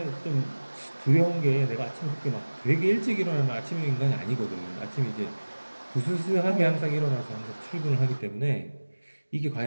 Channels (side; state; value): both; inverted; correlation -1.00